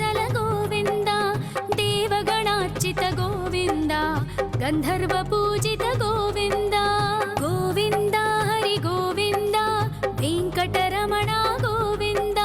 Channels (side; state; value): both; identical; correlation 1.00